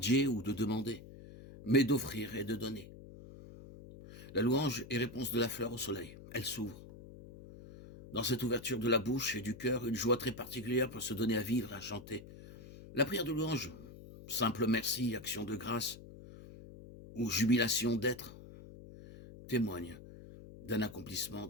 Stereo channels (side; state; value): left; noise; hum, 16 dB below the sound